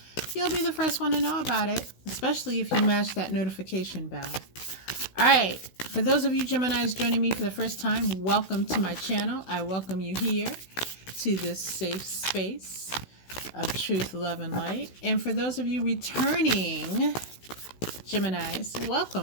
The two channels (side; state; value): right; late; 16 ms